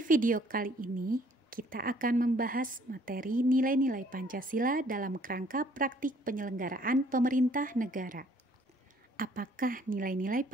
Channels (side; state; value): both; normal; correlation 0.61